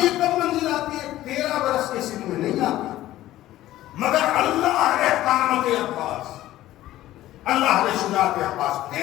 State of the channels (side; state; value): right; quieter; 14.8 dB